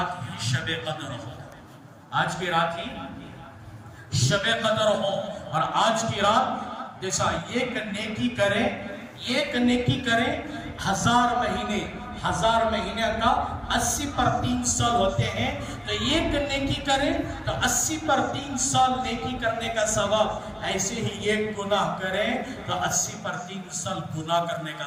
ہی شب قدر ہو آج کی رات ہی شب قدر ہو اور آج کی رات جیسا ایک نیکی کرے 1000 مہینے کا 80 پر 3 سال ہوتے ہیں تو ایک نیکی کرے تو 80 پر 3 سال نیکی کرنے کا ثواب ایسے ہی ایک گناہ کرے تو 80 پر 3 سال گناہ کرنے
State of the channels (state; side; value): identical; both; correlation 1.00